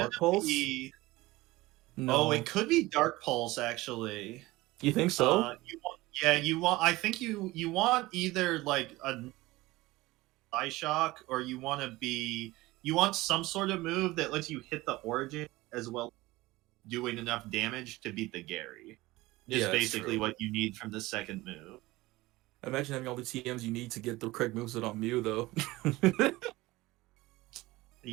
Pulse. No. Oh, it could be Dark Pulse actually. You think so? I think you want either like a Eye Shock, or you want some sort of move that lets you hit the Origin as well, doing enough damage to beat the Gary. Is basically what you need from the second move. Imagine having all the TMs you need to get the correct moveset on Mew, though.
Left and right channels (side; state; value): left; quieter; 19.6 dB